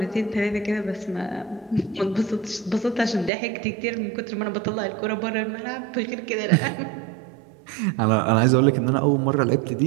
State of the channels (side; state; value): left; drops out; at 3.3 s